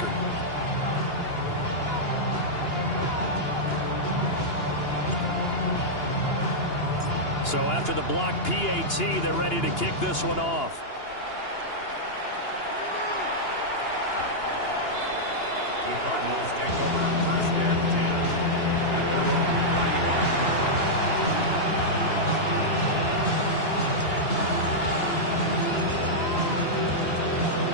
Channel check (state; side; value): late; right; 2.9 ms